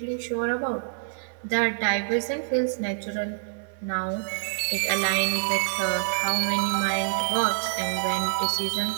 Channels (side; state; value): left; silent; digital silence